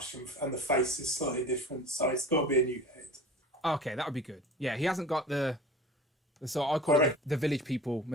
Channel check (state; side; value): normal; both; correlation 0.39